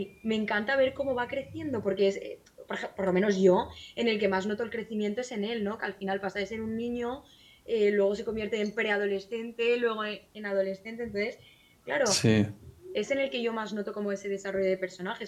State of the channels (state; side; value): identical; both; correlation 1.00